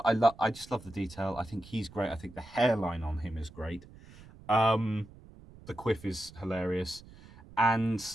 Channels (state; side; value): noise; right; rumble, 20 dB below the sound